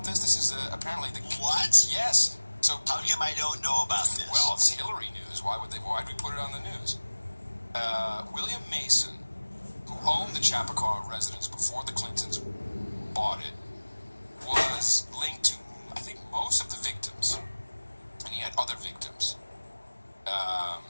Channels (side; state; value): both; inverted; correlation -1.00